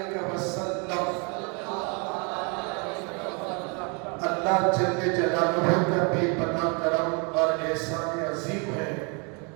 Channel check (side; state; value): left; quieter; 33.5 dB